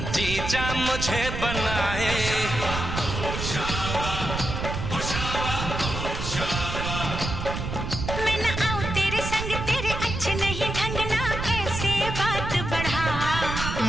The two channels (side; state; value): right; noise; rumble, 4 dB below the sound